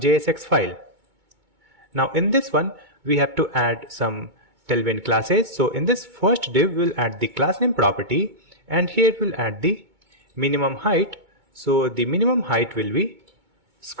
file. Now in this one, we have to add some tailwind classes. So in this first div, we'll add the class name property, and here we'll add the minimum height. So the minimum height will be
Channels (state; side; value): late; left; 2.2 ms